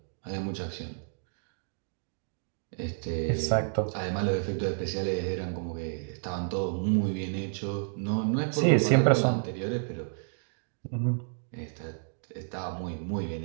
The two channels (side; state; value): left; silent; digital silence